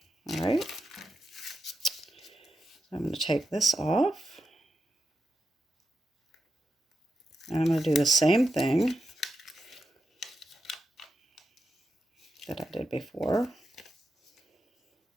All right, I'm going to take this off, and I'm going to do the same thing that I did before.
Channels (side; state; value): both; normal; correlation 0.88